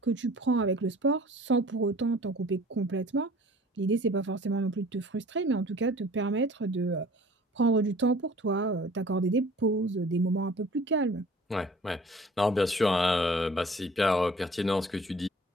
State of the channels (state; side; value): normal; both; correlation 0.49